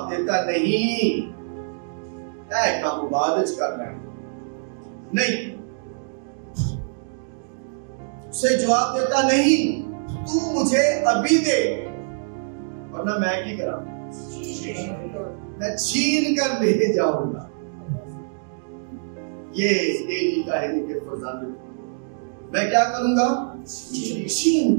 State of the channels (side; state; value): left; silent; digital silence